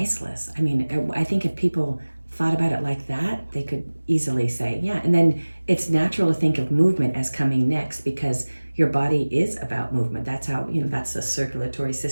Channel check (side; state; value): both; inverted; correlation -1.00